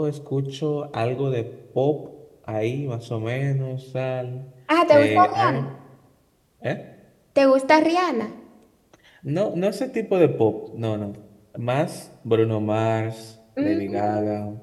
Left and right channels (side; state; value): both; identical; correlation 1.00